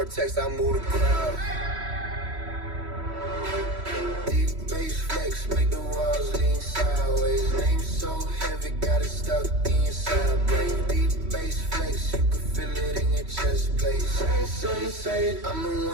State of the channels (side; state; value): left; late; 3.1 ms